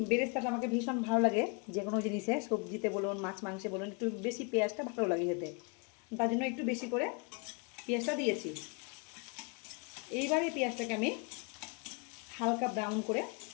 বেরেস্তাটা আমাকে ভীষণ ভালো লাগে, যে কোনো জিনিসে, সবজিতে বলুন মাছ মাংসে বলুন, একটু বেশি পেঁয়াজটা ভালো লাগে খেতে, তার জন্য একটু বেশি করে পেঁয়াজটা দিয়েছি। এইবারে পেঁয়াজটাকে আমি হালকা ব্রাউন করে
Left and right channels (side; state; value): right; quieter; 32.6 dB